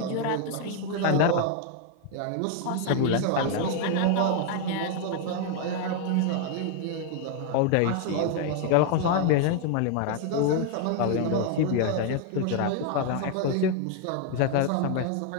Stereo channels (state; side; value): different; both; correlation 0.01